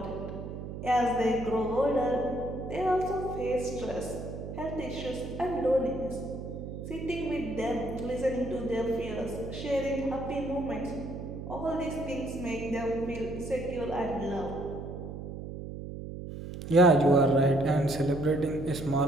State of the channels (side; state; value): right; noise; hum, 8 dB below the sound